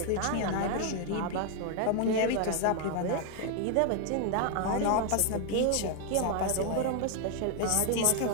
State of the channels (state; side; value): different; both; correlation 0.00